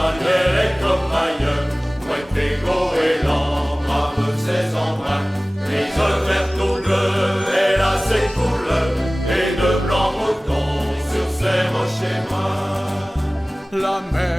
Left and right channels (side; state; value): both; normal; correlation 0.98